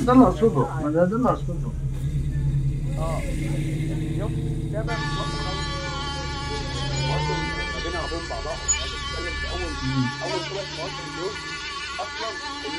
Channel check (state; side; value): identical; both; correlation 1.00